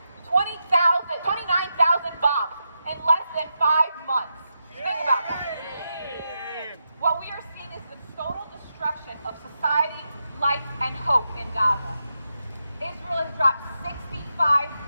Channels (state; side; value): inverted; both; correlation -0.86